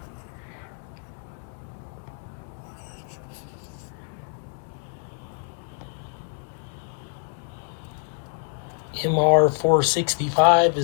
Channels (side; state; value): right; silent; 61 dB below the other